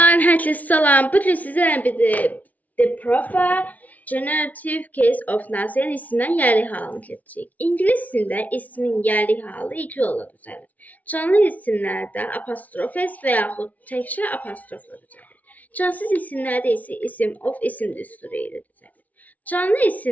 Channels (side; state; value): right; late; 0.073 ms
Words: herkese selam. Bugün sizlerle birlikte The Proper Generative Case of Nazi'nin isminden yerli halını keçəcəyik. İngilis dilində ismin yerli halı iki yolla düzəlir. Canlı isimlərdə apostrof s və yaxud təkcə apostrofla düzəlir. Cansız isimlərdə isə isim of isim düsturu ilə düzəlir. Canlı